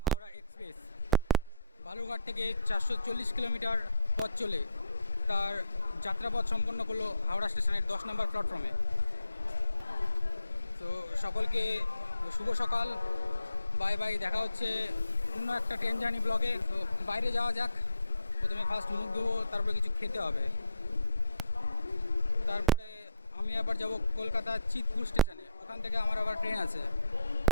হাওড়া এক্সপ্রেস বালুরঘাট থেকে 440 কিলোমিটার পথ চলে তার যাত্রাপথ সম্পন্ন করলো হাওড়া স্টেশনের 10 নম্বর প্ল্যাটফর্মে। তো সকলকে শুভ সকাল। বাই বাই, দেখা হচ্ছে অন্য একটা ট্রেন জার্নি ব্লগে। তো বাইরে যাওয়া যাক। প্রথমে ফার্স্ট মুখ ধোবো, তারপরে কিছু খেতে হবে। তারপরে আমি আবার যাব কলকাতা চিতপুর স্টেশনে, ওখান থেকে আমার আবার ট্রেন আছে।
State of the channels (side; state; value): both; inverted; correlation -0.71